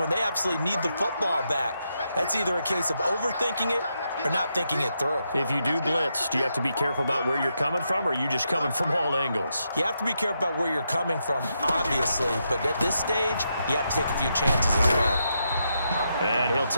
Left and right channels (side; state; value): both; inverted; correlation -0.82